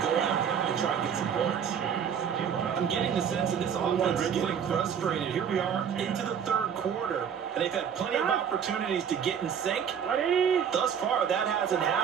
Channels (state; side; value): quieter; left; 7.8 dB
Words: go out and try and get some points. I'm getting the sense that this offense is getting frustrated. Here we are into the 3rd quarter, and they've had plenty of opportunities to get in sync. Thus far, that hasn't